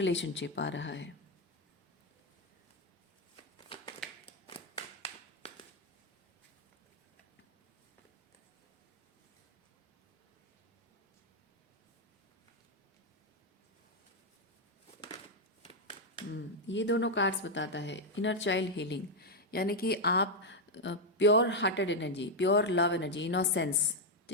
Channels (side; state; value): both; normal; correlation 0.01